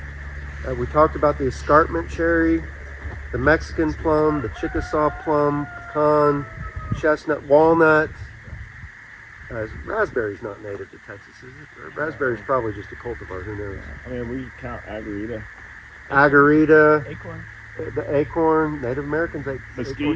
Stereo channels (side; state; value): both; identical; correlation 1.00